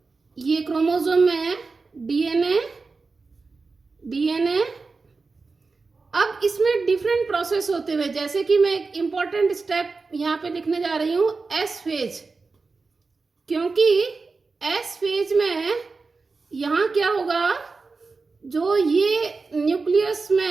ये क्रोमोसोम में डीएनए अब इसमें डिफरेंट प्रोसेस होते हुए, जैसे कि मैं एक इंपॉर्टेंट स्टेप यहां पे लिखने जा रही हूं, एस फेज। क्योंकि एस फेज में यहां क्या होगा, जो ये न्यूक्लियस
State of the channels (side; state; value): left; quieter; 4.1 dB